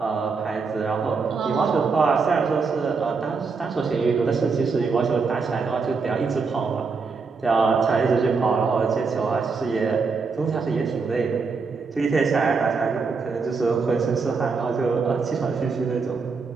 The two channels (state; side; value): quieter; left; 4.8 dB